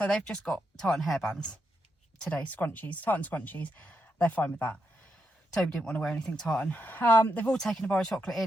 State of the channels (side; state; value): both; normal; correlation 0.83